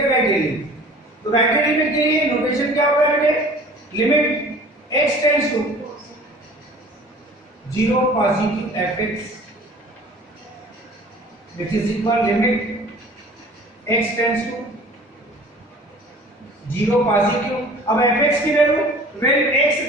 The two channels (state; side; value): normal; both; correlation 0.46